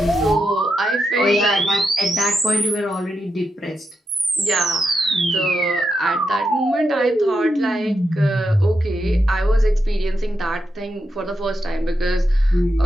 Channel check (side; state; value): both; normal; correlation 0.85